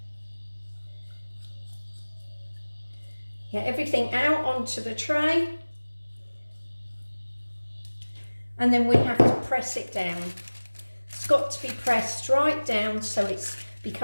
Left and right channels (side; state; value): both; inverted; correlation -1.00